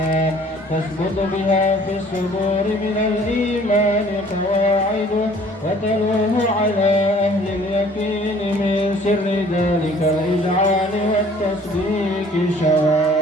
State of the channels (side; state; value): both; normal; correlation 0.54